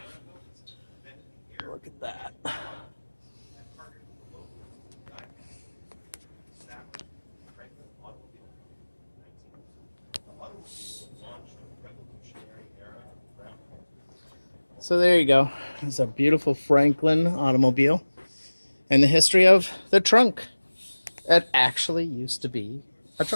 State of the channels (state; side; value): inverted; both; correlation -1.00